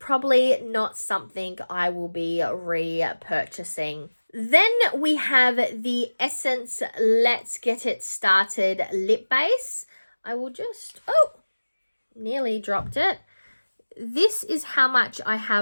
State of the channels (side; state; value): both; inverted; correlation -1.00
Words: not something I will be repurchasing. Then we have the Essence Let's Get It Started lip base. I will just, nearly dropped it. This is how much I